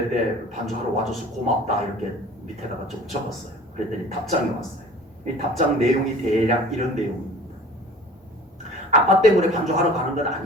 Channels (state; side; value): normal; both; correlation 0.44